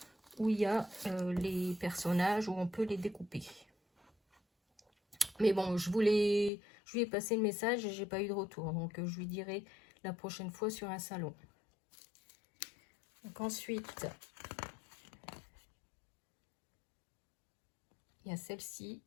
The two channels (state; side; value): drops out; right; at 6.5 s